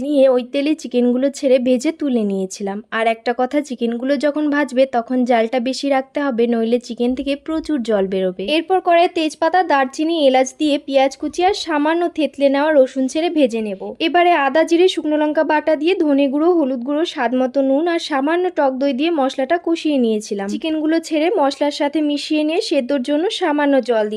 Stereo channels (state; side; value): identical; both; correlation 1.00